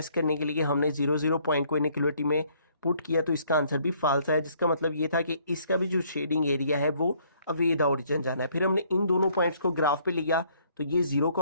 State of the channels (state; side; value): inverted; both; correlation -0.64